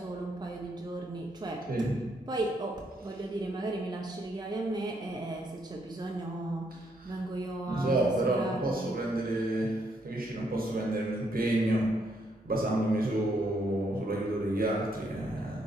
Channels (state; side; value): normal; both; correlation 0.74